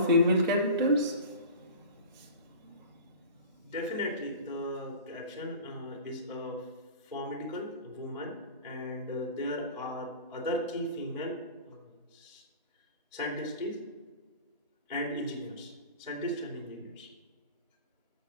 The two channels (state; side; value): inverted; both; correlation -0.37